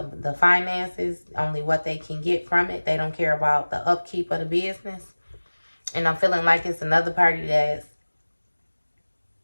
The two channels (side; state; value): both; inverted; correlation -1.00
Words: finances, only what they can get from it. They don't care about the upkeep of the business. And I'm feeling like it's another party that's,